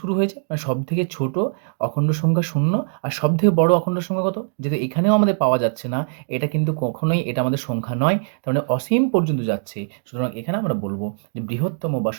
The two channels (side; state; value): left; silent; digital silence